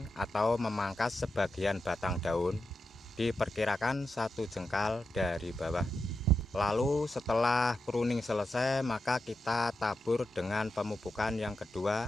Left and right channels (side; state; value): both; normal; correlation 0.88